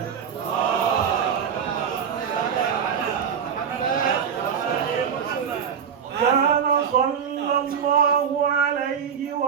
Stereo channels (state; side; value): quieter; left; 7.3 dB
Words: كان صلى الله عليه